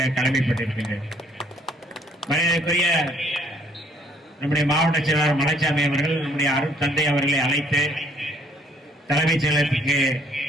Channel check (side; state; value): both; normal; correlation 0.64